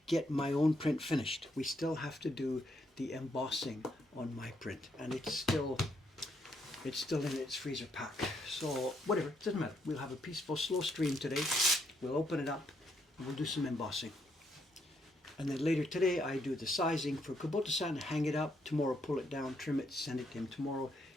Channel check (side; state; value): both; normal; correlation 0.75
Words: get my own print finished. We still have to do the embossing on my print, and it's still in its freezer pack. So whatever, it doesn't matter. We'll have a peaceful, slow stream today. We'll open it up, and we'll do some embossing. And then later today, I do the sizing for Kubota-san, hang it up. Tomorrow, pull it down, trim it, send it to him tomorrow.